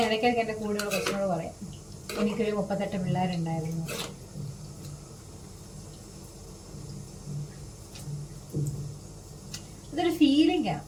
ഇടയ്ക്കൊക്കെ എൻ്റെ കൂടെയുള്ള കൊച്ചിനോട് പറയാം എനിക്കൊരു 38 പിള്ളേരുണ്ടായിരുന്നു. അതൊരു ഫീലിംഗാണ്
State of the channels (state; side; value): identical; both; correlation 1.00